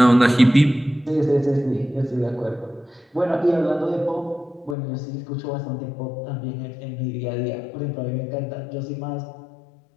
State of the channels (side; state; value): right; drops out; at 4.8 s